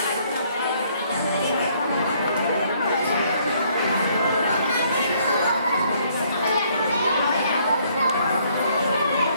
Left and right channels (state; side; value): inverted; both; correlation -0.66